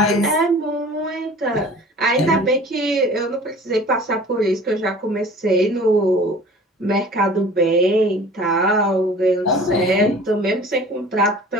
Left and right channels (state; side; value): normal; both; correlation 0.45